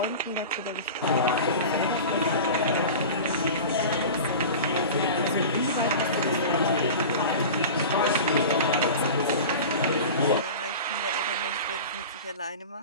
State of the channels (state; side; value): inverted; both; correlation -0.33